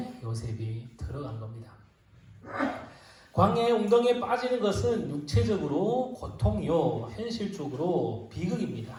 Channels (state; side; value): identical; both; correlation 1.00